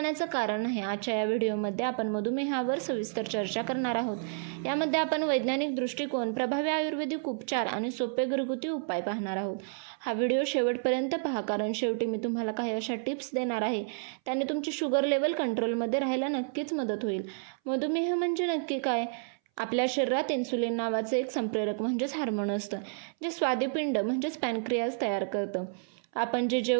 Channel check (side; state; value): left; silent; 58 dB below the other